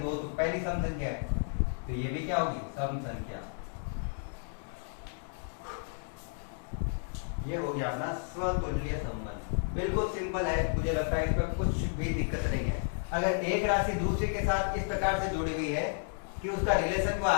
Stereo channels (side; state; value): right; silent; digital silence